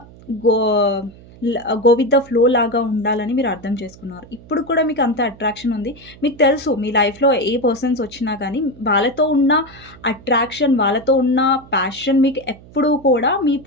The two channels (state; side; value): noise; right; hum, 22 dB below the sound